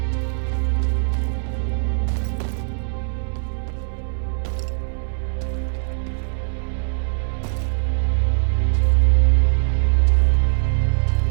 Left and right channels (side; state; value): left; silent; digital silence